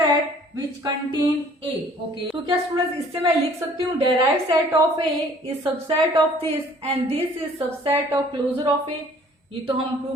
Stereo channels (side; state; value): both; normal; correlation 0.55